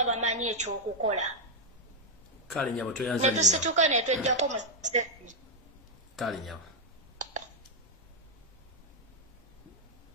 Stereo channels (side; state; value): both; normal; correlation -0.02